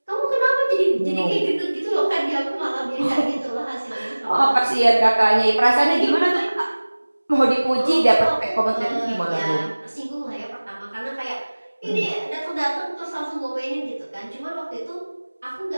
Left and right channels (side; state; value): both; inverted; correlation -1.00